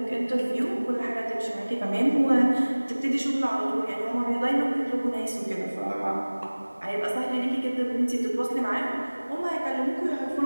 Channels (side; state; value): both; inverted; correlation -1.00